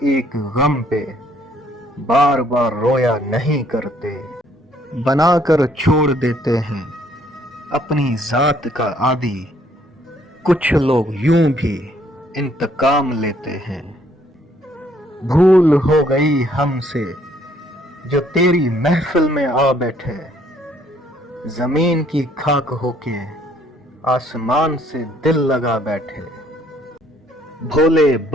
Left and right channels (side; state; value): both; normal; correlation 0.65